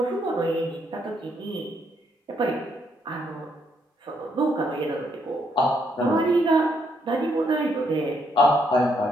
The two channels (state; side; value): normal; both; correlation 0.74